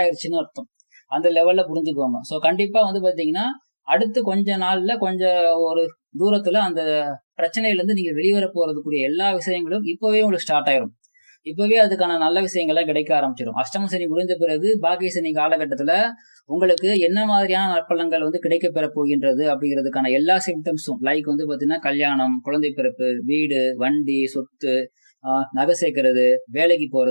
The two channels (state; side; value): inverted; both; correlation -1.00